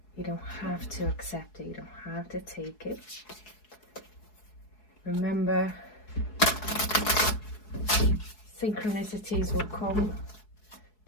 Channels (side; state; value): right; late; 4.7 ms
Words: you don't have to accept it, you don't have to take it. Remember, synchronicities will come